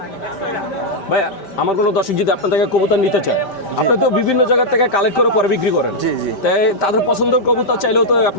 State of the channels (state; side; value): late; right; 5.1 ms